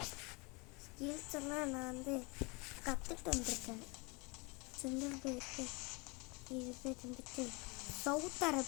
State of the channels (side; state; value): right; quieter; 28.4 dB